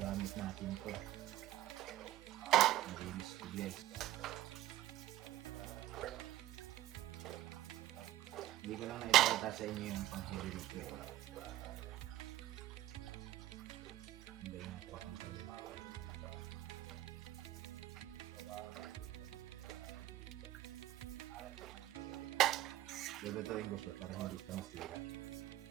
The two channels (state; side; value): quieter; left; 14.7 dB